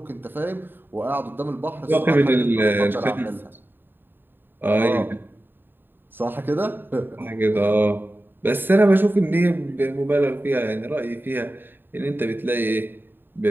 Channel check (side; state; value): left; late; 0.096 ms